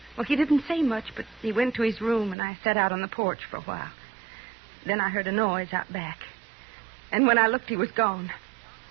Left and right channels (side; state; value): left; drops out; at 2.4 s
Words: Well, he didn't say much, but he went to his room, and I sat out on the porch for a while. Then I heard a noise out back. And when I looked, he was gone.